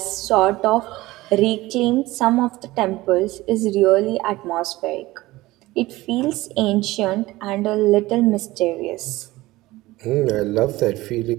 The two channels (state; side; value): quieter; left; 18.7 dB